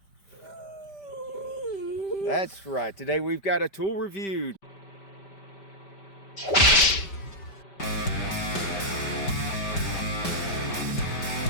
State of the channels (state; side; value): late; right; 5.1 ms